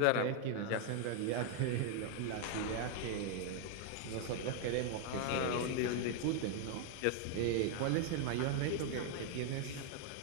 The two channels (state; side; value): different; both; correlation 0.00